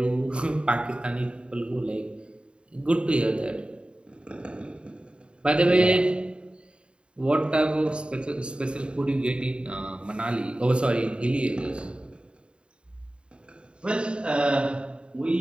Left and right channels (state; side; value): late; left; 0.054 ms